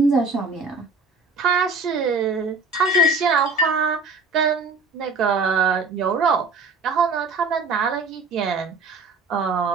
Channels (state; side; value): quieter; left; 3.9 dB